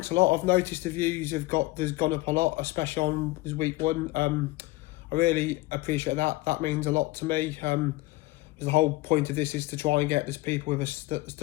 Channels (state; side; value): quieter; right; 20.0 dB